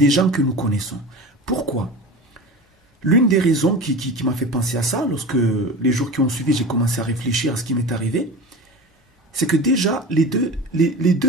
gens que nous connaissons. Pourquoi? L'une des raisons qui m'a fait penser à ça, lorsque les jours qui ont suivi, j'ai commencé à réfléchir à ce qui m'est arrivé, c'est que déjà, les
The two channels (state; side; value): normal; both; correlation 0.32